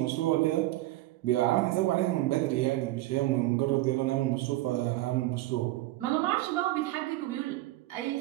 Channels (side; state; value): left; quieter; 17.5 dB